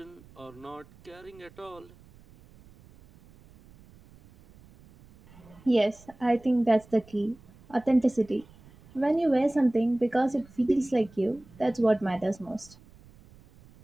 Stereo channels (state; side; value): noise; right; rumble, 25 dB below the sound